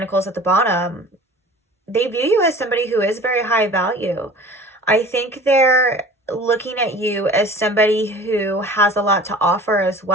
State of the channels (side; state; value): both; normal; correlation 0.43